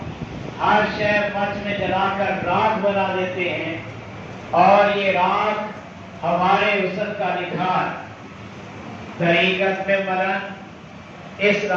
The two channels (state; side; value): identical; both; correlation 1.00